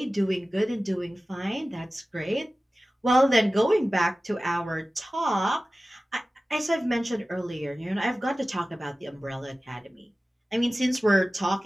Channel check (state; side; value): normal; both; correlation 0.96